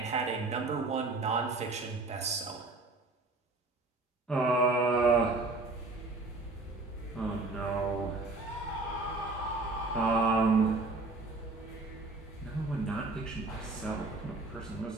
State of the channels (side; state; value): left; quieter; 3.3 dB